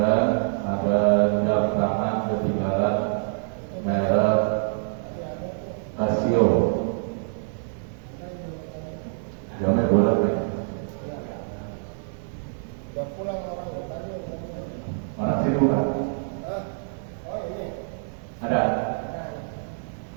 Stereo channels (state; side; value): silent; left; digital silence